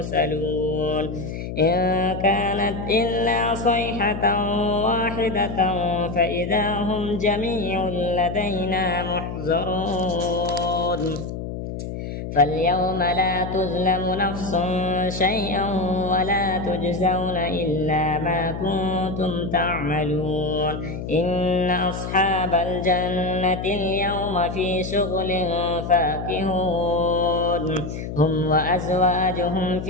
إن كانت إلا صيحة واحدة فإذا هم جميع لدينا محضرون فاليوم لا تظلم نفس شيئا ولا تجزون إلا ما كنتم تعملون إن أصحاب الجنة اليوم في شغل فاكهون هم وأزواجهم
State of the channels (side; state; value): left; noise; hum, 7 dB below the sound